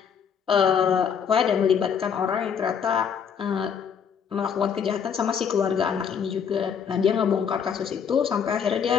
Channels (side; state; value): right; quieter; 7.2 dB